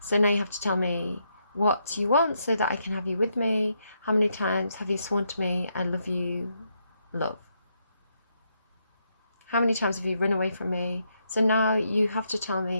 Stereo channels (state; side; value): inverted; both; correlation -0.79